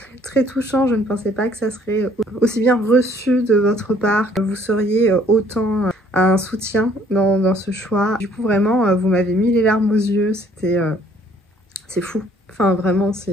très touchant, je ne pensais pas que ça serait aussi bien reçu de votre part, que vous seriez autant un soutien dans ce choix. Du coup, vraiment, vous m'avez mis les larmes aux yeux, c'est fou. Enfin, vraiment,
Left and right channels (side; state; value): both; normal; correlation 0.60